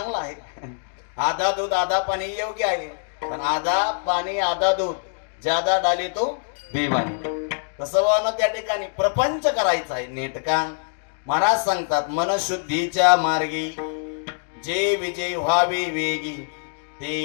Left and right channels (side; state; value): right; silent; digital silence